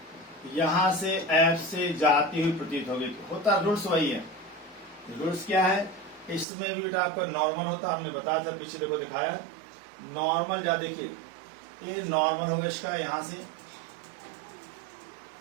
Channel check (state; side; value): drops out; left; at 6.5 s